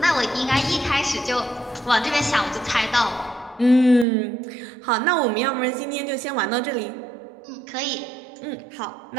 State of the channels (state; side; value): drops out; left; at 4.0 s